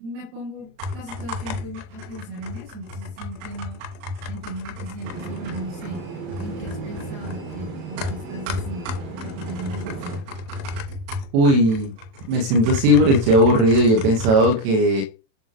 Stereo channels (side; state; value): left; late; 36 ms